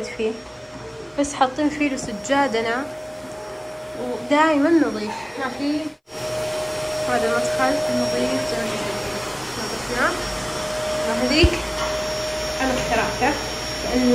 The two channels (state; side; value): identical; both; correlation 1.00